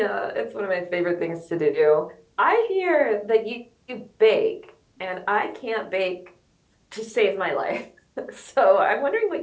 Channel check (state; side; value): identical; both; correlation 1.00